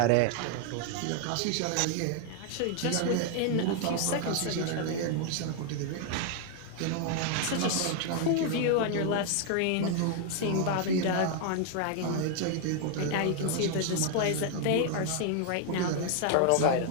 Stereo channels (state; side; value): different; both; correlation 0.00